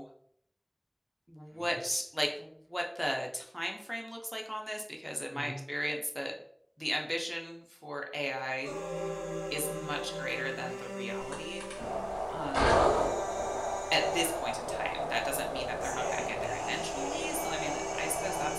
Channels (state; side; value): identical; both; correlation 1.00